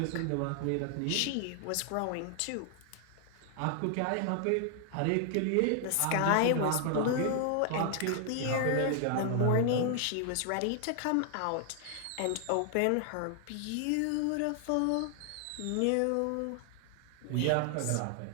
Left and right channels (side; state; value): both; different; correlation 0.00